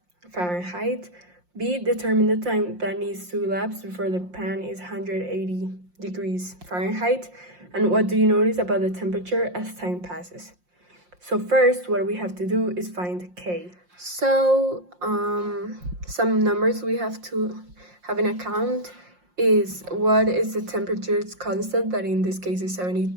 Fahrenheit. B, determine the time that needs to elapse before the pan is 180 degrees Fahrenheit. And what do you notice about the temperature as time passes? So first, what we have to do is find K. So some numbers we have to have in account is what is the temperature's constant, that in this case is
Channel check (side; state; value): left; late; 5.6 ms